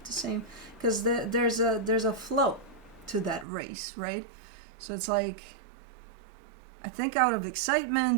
the same, because there's a flow to that race, right? So it's like, I think out of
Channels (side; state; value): left; drops out; at 3.5 s